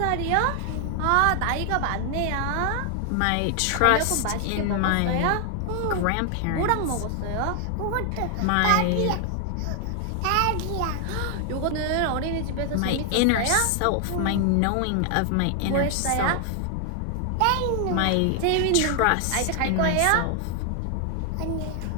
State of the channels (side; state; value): both; different; correlation 0.00